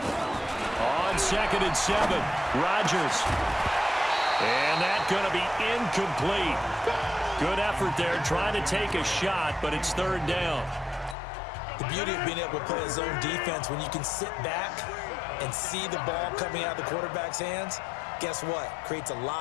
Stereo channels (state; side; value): drops out; right; at 11.2 s